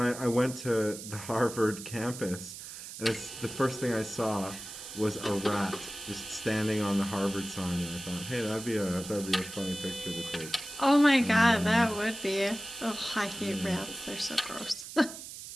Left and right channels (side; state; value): right; noise; hiss, 11 dB below the sound